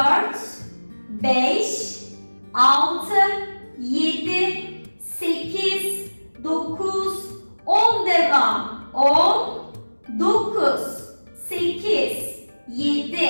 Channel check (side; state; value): both; inverted; correlation -1.00